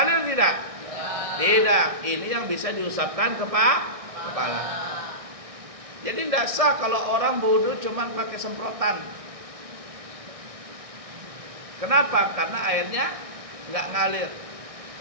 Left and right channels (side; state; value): left; late; 1.6 ms